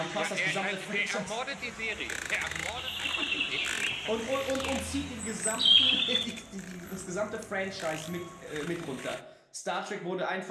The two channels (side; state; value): both; identical; correlation 1.00